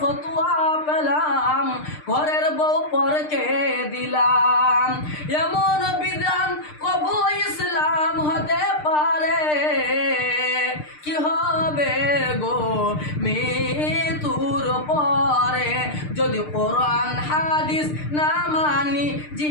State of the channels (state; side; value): late; right; 6.6 ms